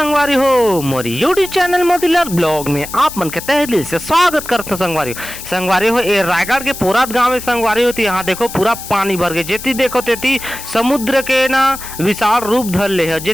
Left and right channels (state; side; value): noise; left; hiss, 11 dB below the sound